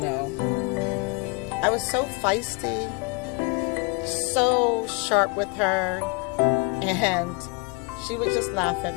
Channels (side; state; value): right; quieter; 29.4 dB